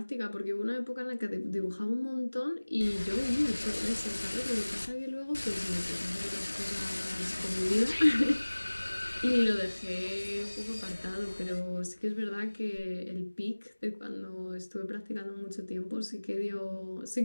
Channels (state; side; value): inverted; both; correlation -1.00